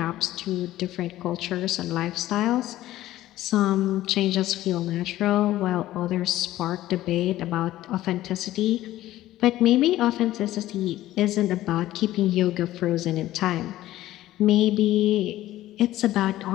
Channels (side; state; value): right; quieter; 14.9 dB